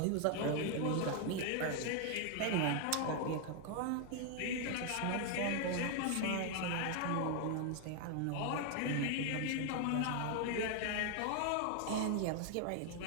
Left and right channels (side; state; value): both; different; correlation 0.01